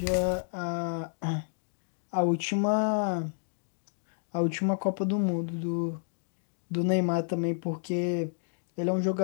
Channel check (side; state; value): right; silent; digital silence